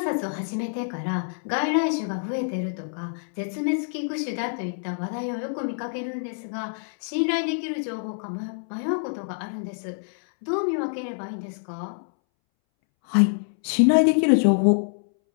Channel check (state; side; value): silent; right; 61 dB below the other